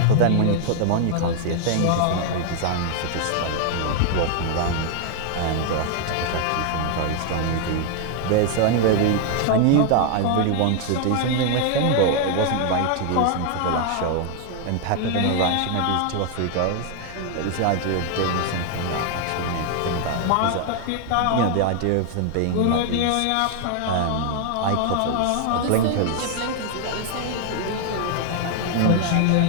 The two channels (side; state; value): both; different; correlation 0.00